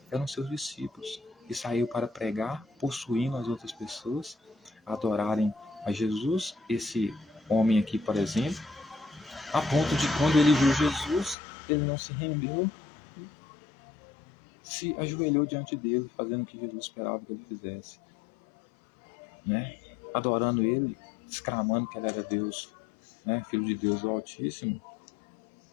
eram seus discípulos. E saiu para pregar, possuindo as outras pessoas, a adorarem a Jesus. Esse homem aqui, por exemplo, a ponto de quando ele viu Jesus, ele não se rendeu, se ajoelhou diante dele, fazendo o que Jesus esperava que ele fizesse, né? Adorando ele, exclamando que ele era Deus, né? Filho de Deus, o Altíssimo,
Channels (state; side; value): drops out; right; at 11.4 s